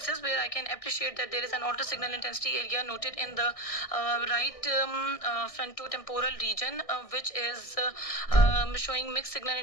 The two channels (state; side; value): late; right; 1.6 ms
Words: where I can appreciate that there is an alter signal intensity area noted in the right frontotemporal region, which is showing mixed signal